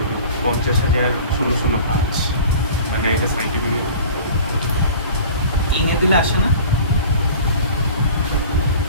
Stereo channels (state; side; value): inverted; both; correlation -0.42